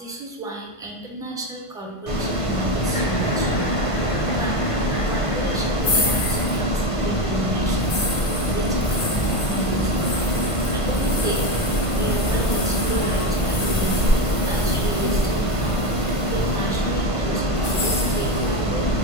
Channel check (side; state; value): right; late; 1.5 ms